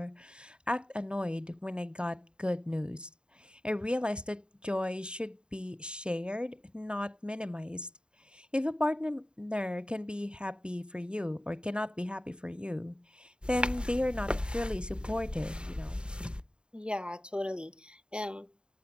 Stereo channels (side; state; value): left; late; 0.051 ms